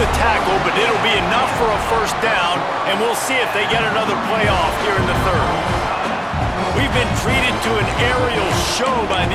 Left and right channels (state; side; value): identical; both; correlation 1.00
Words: tackle, but it'll be enough for a first down, and we'll see if they get another play off here in the third. We've been treated to an aerial show by